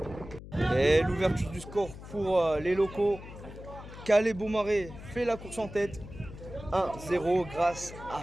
Et l'ouverture du score pour les locaux. Calais Beaumarais fait la course en tête. 1-0 grâce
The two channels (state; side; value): noise; left; hum, 14 dB below the sound